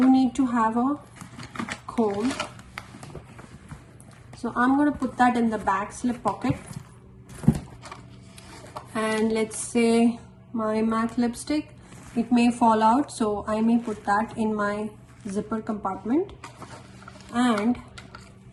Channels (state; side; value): identical; both; correlation 1.00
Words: need to have a comb. So I'm going to put that in the back slip pocket. And let's say my MAC lipstick, it may fall out, so I may put that in my zipper compartment. And